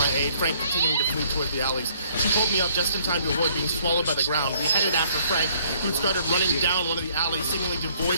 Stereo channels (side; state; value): both; inverted; correlation -0.62